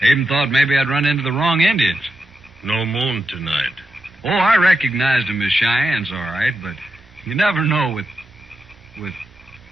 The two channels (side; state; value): both; normal; correlation 0.87